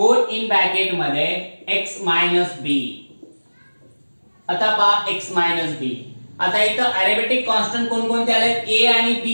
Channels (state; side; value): inverted; both; correlation -1.00